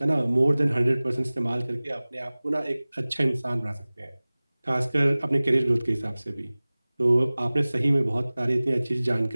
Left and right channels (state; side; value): inverted; both; correlation -0.99